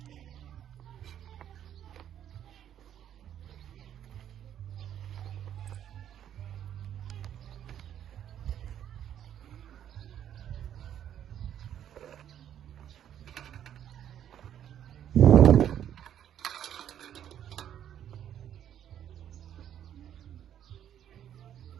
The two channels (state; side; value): quieter; left; 10.2 dB